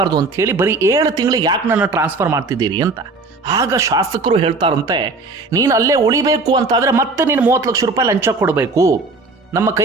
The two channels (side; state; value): left; quieter; 3.6 dB